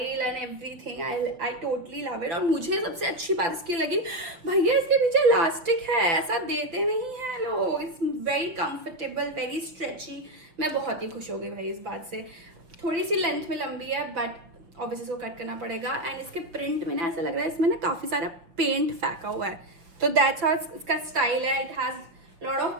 and everything I totally love it. और मुझे सबसे अच्छी बात इसकी लगी, भैया इसके पीछे इलास्टिक है, ऐसा देते नहीं है लोग। It's very comfortable, very stretchy. मैं बहुत ही खुश हो गई भाई इस बात से। थोड़ी सी लेंथ में लंबी है बट ऑब्वियसली इसको कट करना पड़ेगा। एंड इसके प्रिंट में ना ऐसा लग रहा है इसमें ना काफी सारा पेंट फेंका हुआ है, तो दैट्स हाउ इसका स्टाइल है। It has lot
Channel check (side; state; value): left; late; 5.9 ms